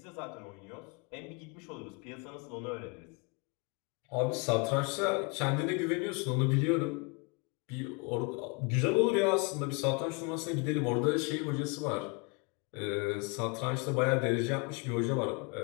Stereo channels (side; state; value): right; quieter; 31.1 dB